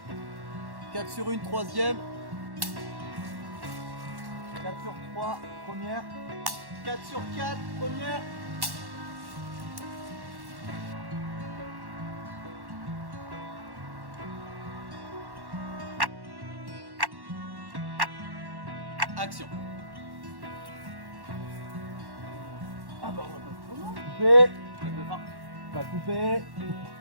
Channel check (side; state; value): left; late; 1.1 ms